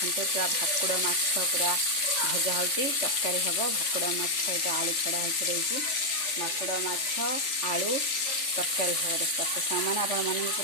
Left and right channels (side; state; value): right; late; 3.4 ms